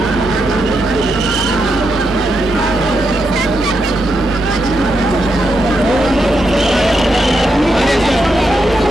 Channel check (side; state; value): both; normal; correlation 0.83